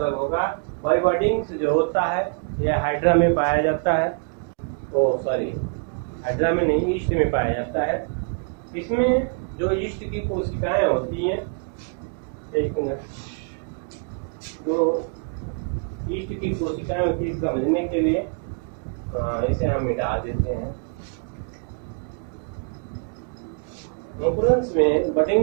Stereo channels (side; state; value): left; quieter; 39.6 dB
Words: होगा। बाई बडिंग्स जो होता है यह हाइड्रा में पाया जाता है। हाइड्रा में नहीं, ईस्ट में पाया जाता है। इसमें जो ईस्ट की कोशिकाएं होती हैं, एक मिनट, जो ईस्ट की कोशिकाएं होती है समझने के लिए इसे हम मिटा देते हैं। मुकुलन्स में,